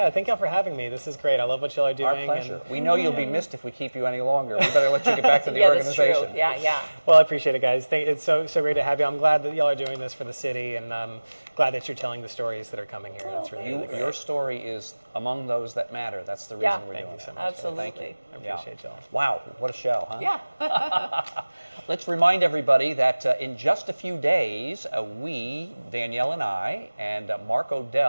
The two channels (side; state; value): both; inverted; correlation -1.00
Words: thank y'all for having me. This is great. I love what y'all are doing. Our pleasure. We know you'll be missed if we keep you any longer. We better let you get back to the Yeah, organization. that's true. Yeah. Well, I appreciate it, guys. It's so great to have you. I'm glad that y'all are doing this for the city, and glad that you're telling the stories that are coming here. It's really great. Your story is among those that matter. That's the reason we're doing Thank you so it. much. Absolutely. Thank you. I appreciate y'all. Wow, what a show, huh? Yeah. Let's remind everybody that in just a few days, we, Danielle and I, and Mark